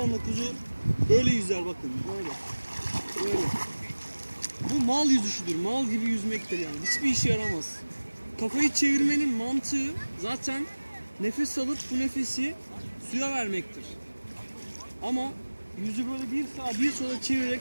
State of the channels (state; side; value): inverted; both; correlation -1.00